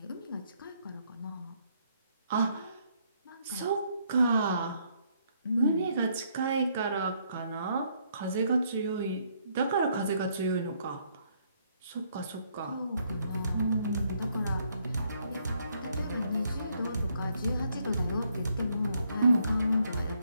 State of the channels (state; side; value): inverted; both; correlation -0.71